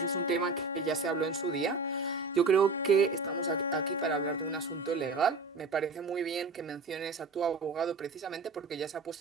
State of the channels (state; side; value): quieter; left; 3.9 dB